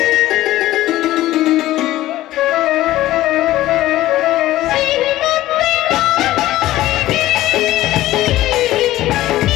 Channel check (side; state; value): right; quieter; 15.5 dB